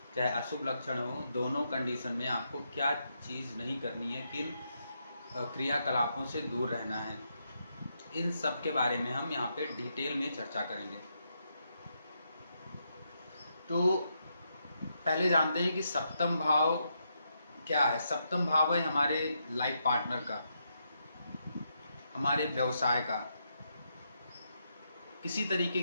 चाहे अशुभ लक्षण हो। दोनों कंडीशन में आपको क्या चीज़ नहीं करनी है, किन क्रियाकलापों से दूर रहना है, इन सब के बारे में हम यहाँ पे डिटेल में चर्चा करेंगे। तो पहले जानते हैं कि सप्तम भाव क्या है। सप्तम भाव है हमारे लाइफ पार्टनर का, हमारे व्यवसाय का। किसी तरीके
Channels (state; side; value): inverted; both; correlation -0.80